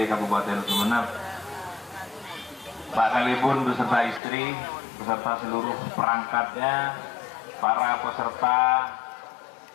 Kabupaten Sumeneb, Pak Kalibun beserta istri, beserta seluruh perangkatnya, para peserta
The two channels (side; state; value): right; drops out; at 4.2 s